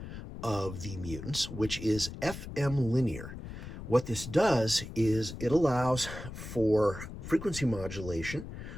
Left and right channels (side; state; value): left; noise; rumble, 10 dB below the sound